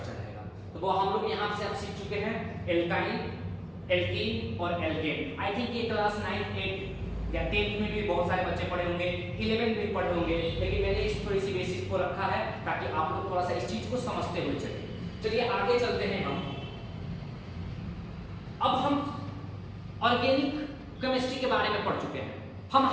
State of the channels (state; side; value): identical; both; correlation 1.00